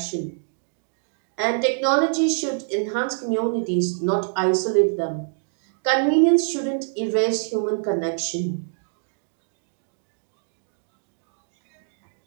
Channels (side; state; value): left; silent; digital silence